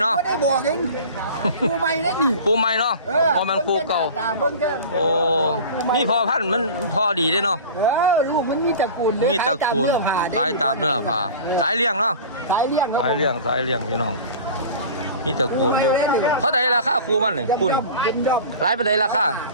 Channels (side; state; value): both; inverted; correlation -0.37